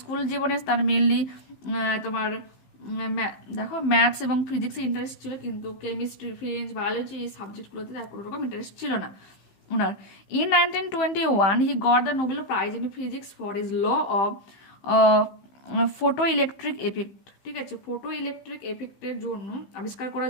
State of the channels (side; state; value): right; late; 15 ms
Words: জীবনে তার মেনলি তোমার দেখো ম্যাথস এবং ফিজিক্সে ইন্টারেস্ট ছিল, কিন্তু কেমিস্ট্রি, ফ্রেঞ্চ, বায়োলজি এই সাবজেক্টগুলোতে তার কোনো রকম ইন্টারেস্ট ছিল না ওনার। In 1921 he got the Nobel Prize in physics for his law of photoelectric effect. ঠিক আছে, ফটো ইলেকট্রিক এফেক্টের জন্য আবিষ্কার